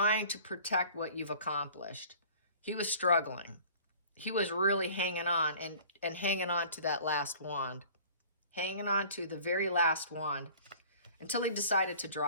to protect what you've accomplished. He was struggling. He was really hanging on and hanging on to that last wand, hanging on to the very last wand until he decided to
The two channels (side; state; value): both; inverted; correlation -0.47